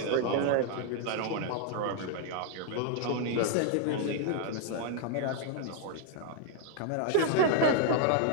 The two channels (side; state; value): both; different; correlation 0.00